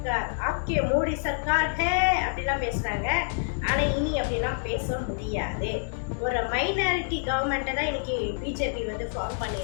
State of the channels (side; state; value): right; silent; 60 dB below the other